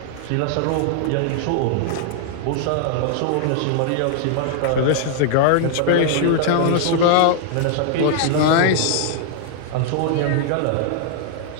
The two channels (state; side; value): different; both; correlation -0.01